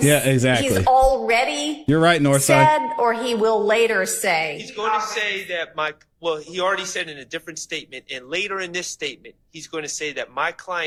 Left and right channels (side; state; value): both; identical; correlation 1.00